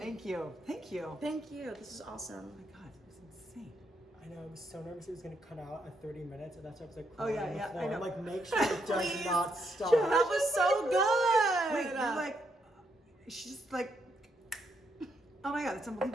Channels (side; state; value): both; normal; correlation 0.77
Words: you. Thank you. This is awesome. Oh my God, it was insane. I know, I was so nervous it was going to cut out at 30 minutes, and that's why I was like, Oh, yeah, crying on the yeah, floor. I know. I'm like, make sure it does Please. not stop. That was so good. Wait, you're like, she's just like, oh my God, it's